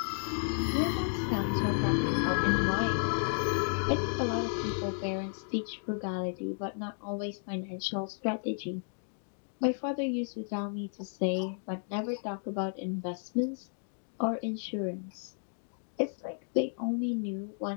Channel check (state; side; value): silent; right; 56 dB below the other